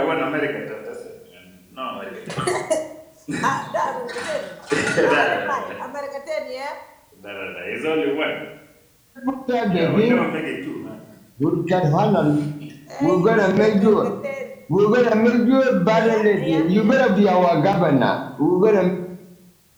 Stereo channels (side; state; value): both; identical; correlation 1.00